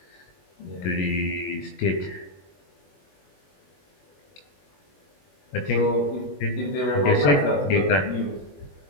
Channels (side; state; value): right; late; 21 ms